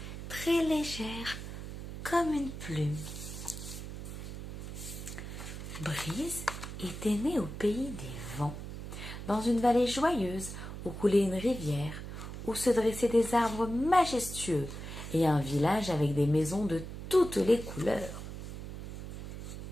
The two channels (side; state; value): right; noise; hum, 9 dB below the sound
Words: très légères comme une plume. Brise était née au pays des vents, dans une vallée joyeuse où coulait une rivière, où se dressaient des arbres majestueux et un village avec des maisons de toutes les couleurs.